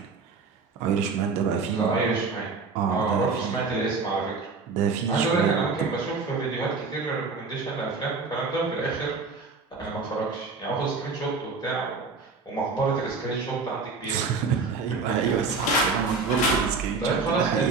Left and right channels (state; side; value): quieter; left; 4.3 dB